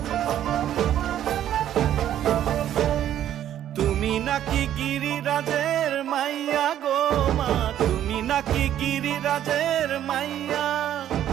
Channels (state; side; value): quieter; left; 11.2 dB